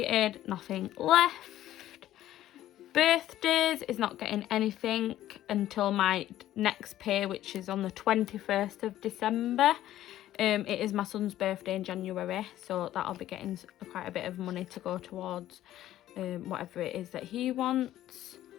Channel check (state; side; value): quieter; right; 13.3 dB